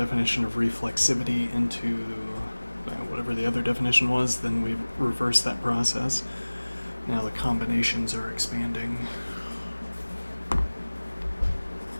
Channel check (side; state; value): both; inverted; correlation -1.00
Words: of reflexivity into whatever the other definition was, then we reversed that process. Now the combinations are expanding.